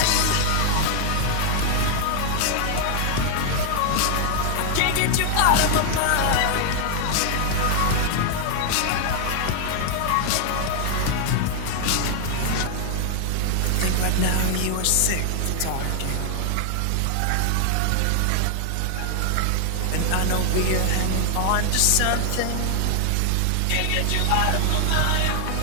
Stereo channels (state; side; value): different; both; correlation 0.00